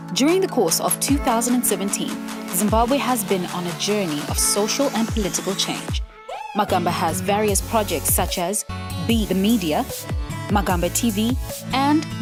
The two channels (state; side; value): identical; both; correlation 1.00